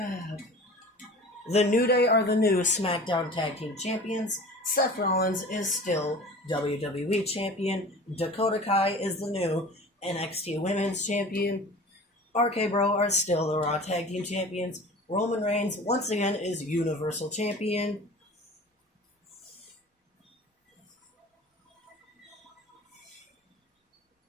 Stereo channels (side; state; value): both; normal; correlation 0.40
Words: The New Day are the new SmackDown Tag Team Champions. Seth Rollins is still WWE Champion. Dakota Kai is the new NXT Women's Champion. RK Bro are still the Raw Tag Team Champions. Roman Reigns, once again, is Universal Champion.